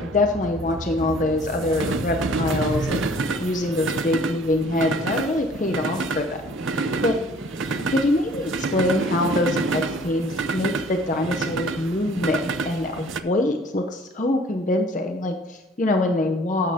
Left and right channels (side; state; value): both; normal; correlation 0.53